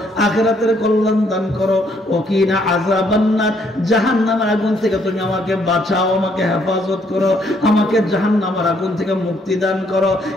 আখিরাতের কল্যাণ দান করো, ওয়া কিনা আযাবান নার, জাহান্নামের আগুন থেকে তুমি আমাকে বাঁচাও, আমাকে হেফাজত করো, আমাকে জাহান্নামের আগুন থেকে মুক্তি দান করো।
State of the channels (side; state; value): both; normal; correlation 0.69